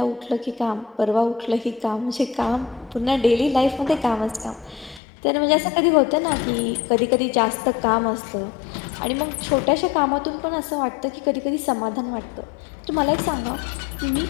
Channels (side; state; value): right; drops out; at 5.0 s